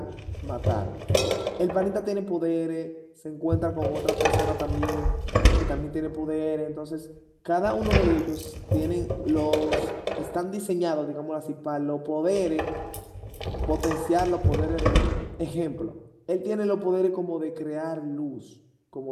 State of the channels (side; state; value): both; identical; correlation 1.00